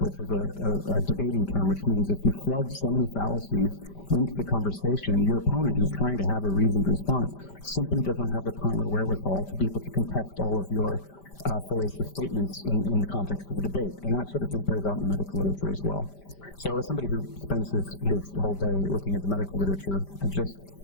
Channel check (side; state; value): right; late; 5.1 ms